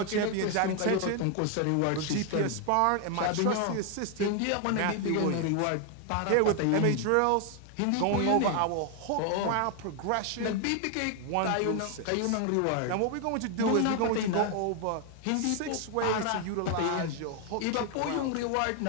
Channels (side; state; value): both; different; correlation 0.00